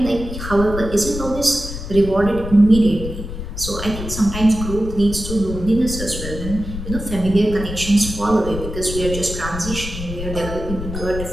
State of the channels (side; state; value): left; noise; rumble, 8 dB below the sound